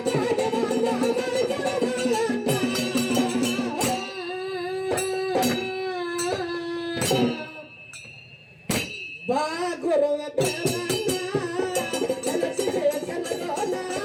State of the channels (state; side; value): identical; both; correlation 1.00